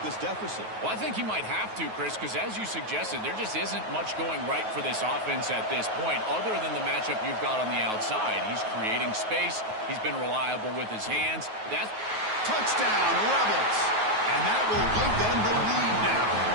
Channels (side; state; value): left; late; 9.3 ms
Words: deficit? Well, I think he might have to, Chris, because as you suggested, there just isn't much going right for this offense at this point, other than the matchup you've got on the outside. He's creating space. He's been reliable with his hands. That's touchdown, Rebels. And that will give them the lead now.